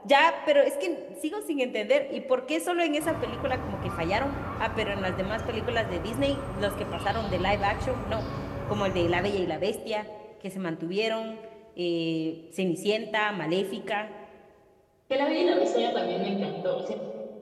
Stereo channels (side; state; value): both; identical; correlation 1.00